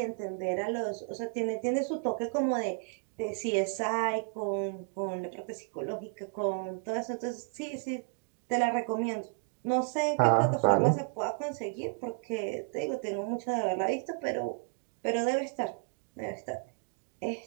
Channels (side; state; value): left; silent; 56 dB below the other